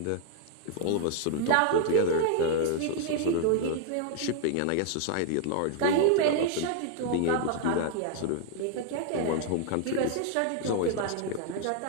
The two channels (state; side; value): different; both; correlation 0.00